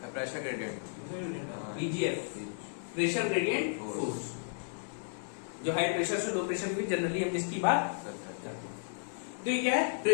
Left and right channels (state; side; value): silent; right; 55 dB below the other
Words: gradient, PGF, pressure gradient force, जो हाई प्रेशर से लो प्रेशर में जनरली हम जिसकी बात करते हैं। तो ये क्या है?